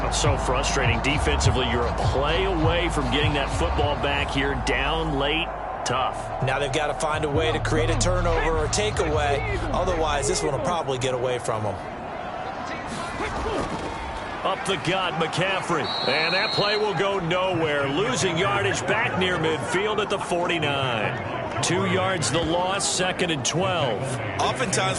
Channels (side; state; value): both; identical; correlation 1.00